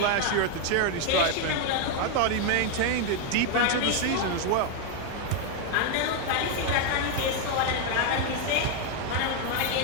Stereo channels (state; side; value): different; both; correlation 0.01